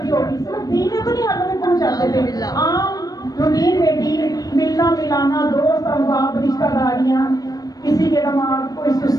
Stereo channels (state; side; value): late; right; 0.18 ms